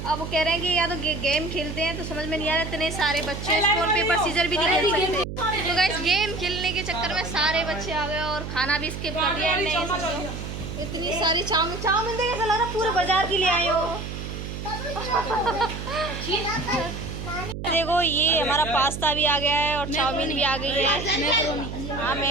अब वो कह रहे हैं कि या तो गेम खेलते हैं, तो समझ में नहीं आ रहा, इतने सारे बच्चे स्टोन पेपर सीजर भी नहीं खेल सकते। तो गाइस गेम खेलने के चक्कर में सारे बच्चे आ गए और खाना भी स्किप कर दिया इनने। समझो इतनी सारी चाउमीन देख, ऐसा लग रहा पूरे बाजार की ले आए हो। देखो ये हमारा पास्ता भी आ गया है और चाउमीन भी आ गई है, हाँ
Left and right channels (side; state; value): right; noise; hum, 7 dB below the sound